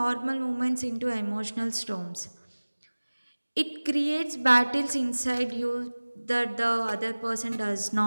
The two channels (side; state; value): both; inverted; correlation -1.00